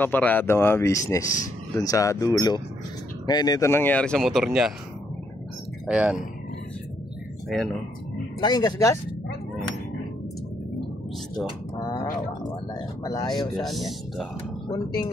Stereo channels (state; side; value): normal; both; correlation 0.74